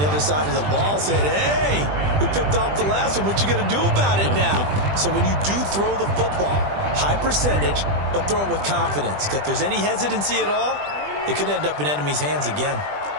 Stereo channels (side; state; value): left; late; 20 ms